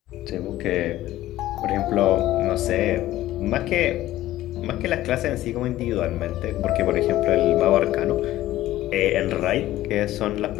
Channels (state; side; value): quieter; right; 15.0 dB